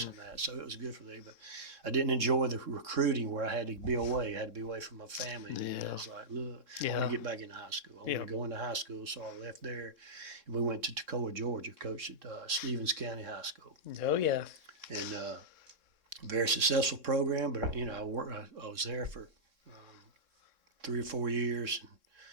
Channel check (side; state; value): left; late; 3.6 ms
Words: mm-hmm. and that. So it was good for me, but I didn't enjoy the recruiting where I had to be away. I had to be away from my family. And I was like, look, I want to get back into high school. I want to go into high school. So I left there, and we went to Toccoa, Georgia, coached at Stevens County High School. Oh, yeah. And very successful program, but, I was there for 3 or 4 years, and